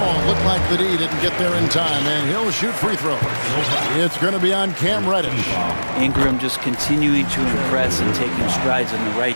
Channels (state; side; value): inverted; both; correlation -1.00